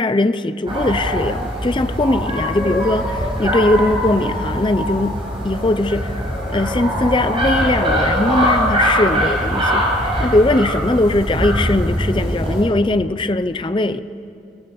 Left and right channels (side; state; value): both; normal; correlation 0.62